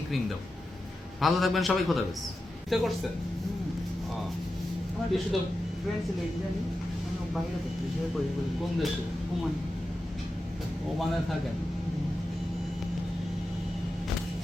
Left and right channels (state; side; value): normal; both; correlation 0.91